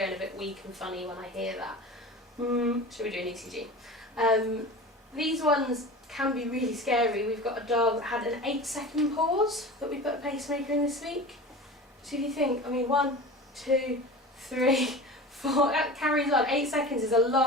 a bit weak and funny when I hear that. Should we do an ECG? these ones can be really scary. We've got a dog that had an 8-second pause that we put a pacemaker in this week. So if you think, I mean, 1, 2, 3, 4, that carries on. 8 seconds is a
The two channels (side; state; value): both; normal; correlation 0.34